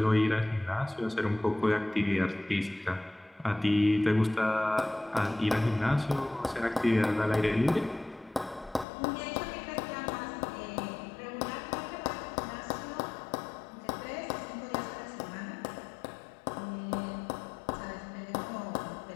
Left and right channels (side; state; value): right; drops out; at 8.8 s